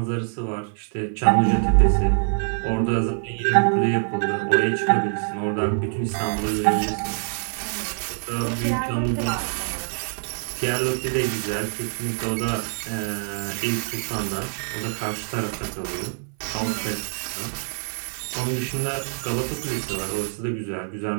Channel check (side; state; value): left; silent; 55 dB below the other